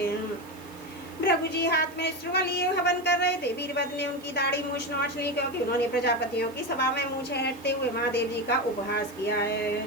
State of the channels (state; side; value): noise; right; hiss, 24 dB below the sound